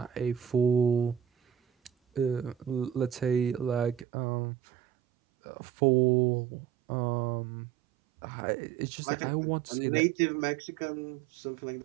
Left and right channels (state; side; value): drops out; left; at 4.0 s